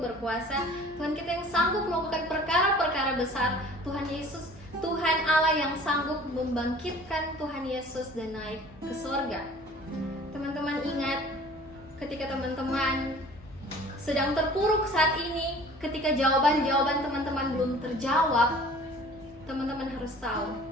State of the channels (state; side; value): normal; both; correlation 0.48